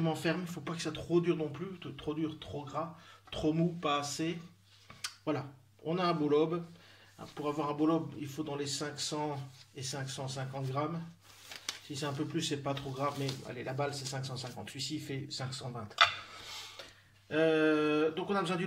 ferme. Il ne faut pas que ça soit trop dur non plus, trop dur, trop gras, trop mou, pas assez. Voilà, on a un beau lobe. Pour avoir un beau lobe, il faut dans les 500 et 550 grammes. Si c'est un peu plus, c'est pas trop grave, mais allez, la balle c'est 550. Celui-ci il fait 520. Donc on a besoin du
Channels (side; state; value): both; identical; correlation 1.00